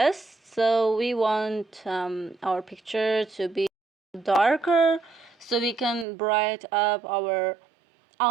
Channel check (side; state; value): left; drops out; at 6.1 s